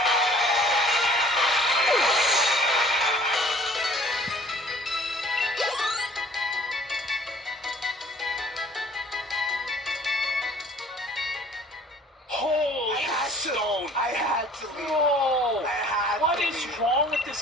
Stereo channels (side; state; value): both; normal; correlation 0.52